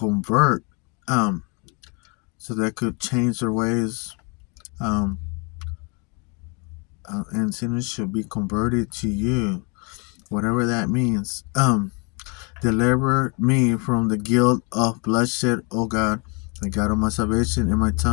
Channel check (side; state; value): right; quieter; 32.7 dB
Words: so they could change their ways, um, and sinners should be converted to you, whatever that means. Deliver me from the guilt of bloodshed, O God, the God of my salvation, and my